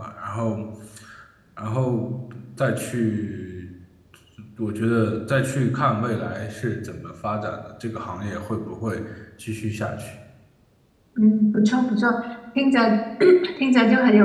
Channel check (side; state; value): both; identical; correlation 1.00